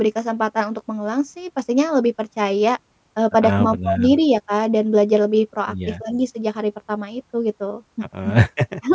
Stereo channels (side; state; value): both; identical; correlation 1.00